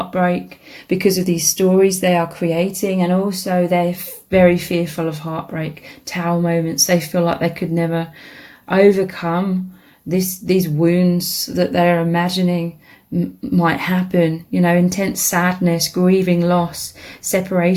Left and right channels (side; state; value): both; identical; correlation 1.00